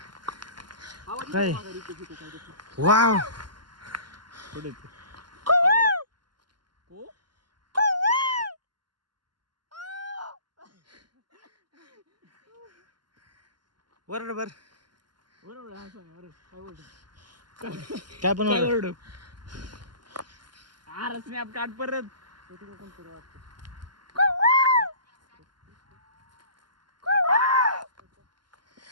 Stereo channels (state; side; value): late; left; 0.71 ms